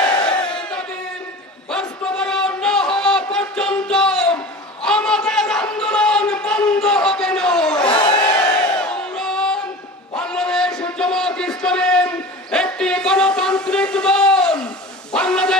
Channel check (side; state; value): both; normal; correlation 0.36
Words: বাস্তবায়ন না হওয়া পর্যন্ত আমাদের আন্দোলন বন্ধ হবে না। বাংলাদেশ জামাত ইসলামী একটি গণতান্ত্রিক দল।